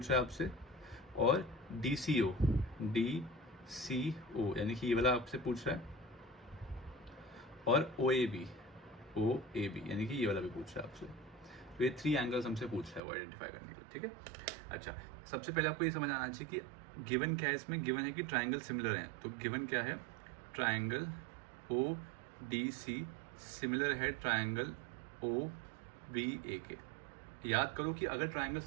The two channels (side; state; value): left; drops out; at 13.0 s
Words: रहा है आपसे। और डीसीओ यानी कि ये वाला आपसे पूछ रहा है। और ओएबी यानी कि ये वाला भी पूछ रहा है आपसे। तो ये 3 एंगल्स हमसे पूछ रहा है वो आइडेंटिफाई करने के लिए। ठीक है, अच्छा सबसे पहले आपको ये समझ आना चाहिए कि गिवन क्या है। इसमें गिवन है कि ट्राइंगल सिमिलर हैं, तो गिवन क्या है, triangle O D C similar है ट्राइंगल ओ बी ए के। याद करो कि अगर ट्राइंगल